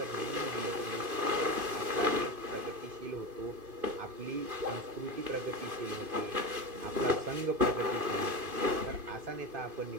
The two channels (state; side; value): late; left; 2.5 ms